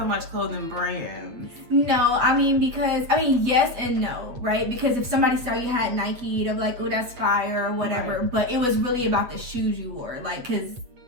much clothing brands. No, yes and no, right? Because if somebody saw you had Nike, they'll be like, oh, that's fire or whatever. Right. But it was really about the shoes you wore. Like, because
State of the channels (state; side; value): late; left; 8.6 ms